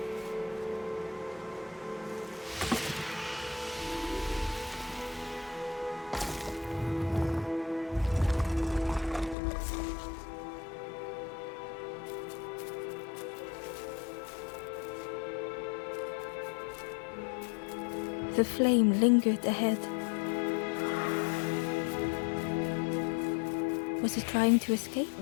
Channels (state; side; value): drops out; right; at 9.3 s